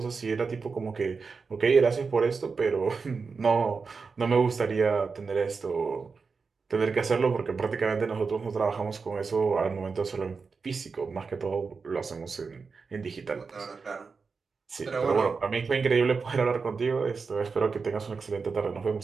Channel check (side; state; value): left; quieter; 4.9 dB